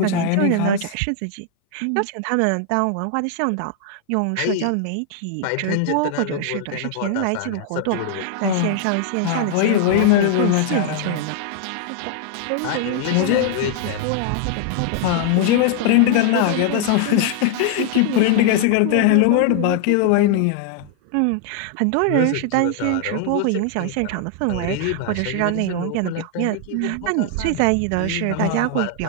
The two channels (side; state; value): both; different; correlation 0.00